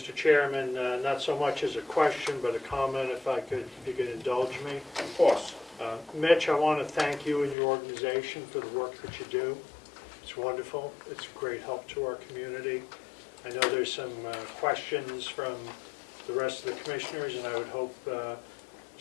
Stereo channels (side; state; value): right; drops out; at 7.6 s